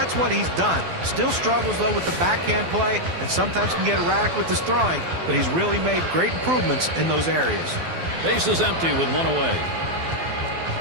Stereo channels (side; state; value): left; late; 12 ms